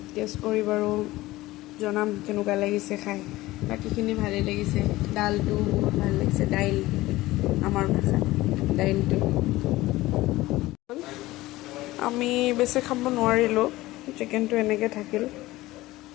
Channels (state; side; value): quieter; right; 18.1 dB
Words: টেষ্ট কৰি বাৰু জনাম কেনেকুৱা লাগিছে খাই। বাকীখিনি ভালেই লাগিছে। ডালটো বহুত ভাল লাগিছে, দাইল আমাৰ ভাষাত দাইলটো। আমি বেছি খাব নোৱাৰিলোঁ, চিকেনটো এনেকৈ থাকিল।